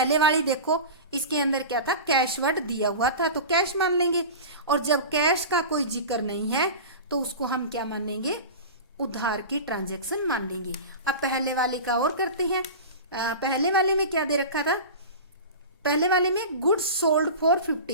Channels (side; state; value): both; inverted; correlation -0.31